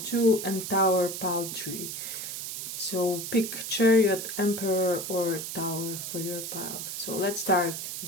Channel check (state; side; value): noise; right; hiss, 6 dB below the sound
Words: and Tower pile 3. So pick Chariot, Emperor or Tower for your pile. So let's start with